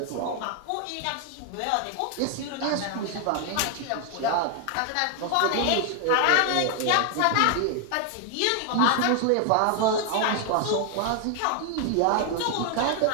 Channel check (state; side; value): different; both; correlation 0.00